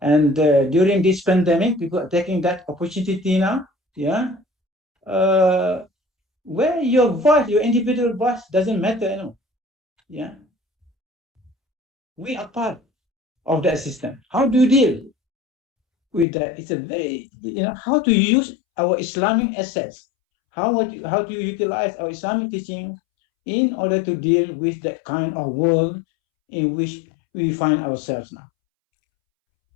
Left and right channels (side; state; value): right; drops out; at 16.2 s